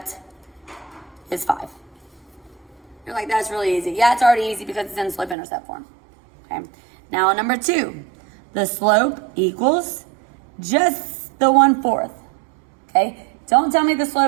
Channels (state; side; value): drops out; left; at 5.4 s